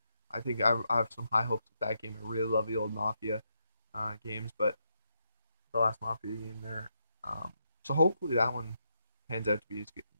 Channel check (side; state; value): both; inverted; correlation -0.81